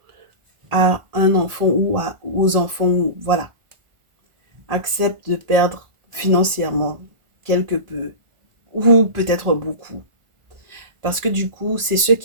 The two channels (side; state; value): left; late; 1.4 ms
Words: à un enfant ou aux enfants, voilà. Accepte de perdre financièrement quelque peu ou peut-être beaucoup. Parce que du coup, c'est ce